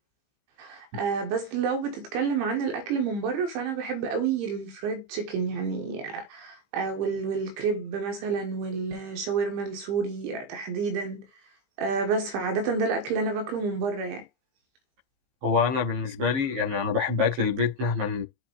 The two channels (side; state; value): left; late; 15 ms